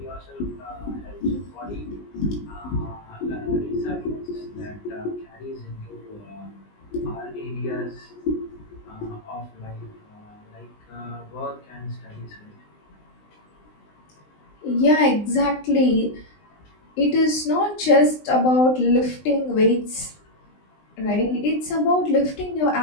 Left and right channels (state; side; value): late; right; 19 ms